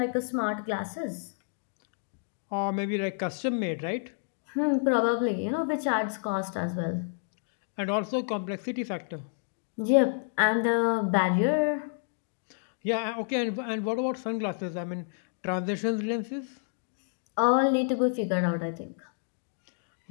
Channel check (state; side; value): silent; right; digital silence